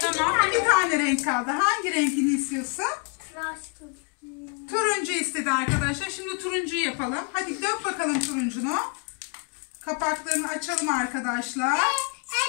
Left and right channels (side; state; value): right; quieter; 35.4 dB